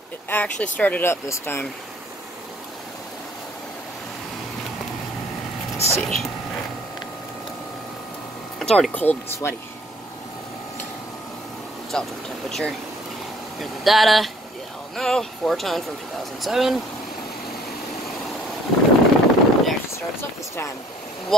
It actually started up this time. Let's see. It's already cold and sweaty. It's outdoor temperature. Here's the data. You all know, 4-ton from 2007. It actually starts up this time,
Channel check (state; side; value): normal; both; correlation 0.57